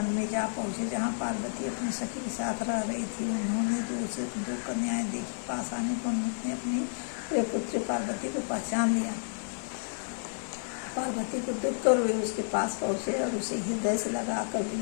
में जा पहुँचे जहाँ पार्वती अपने सखी के साथ रह रही थी। उन्होंने दो कन्याएं देखी। पास आने पर उन्होंने अपनी प्रिय पुत्री पार्वती को पहचान लिया। पार्वती को देखकर वे उसके पास पहुँचे और उसे हृदय से लगाकर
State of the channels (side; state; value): right; silent; digital silence